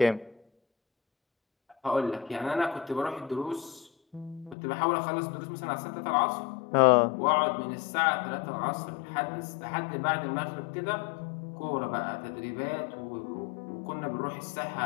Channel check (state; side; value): drops out; right; at 4.5 s